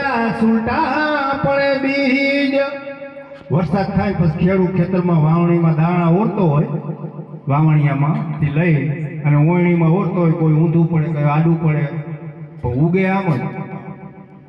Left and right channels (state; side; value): identical; both; correlation 1.00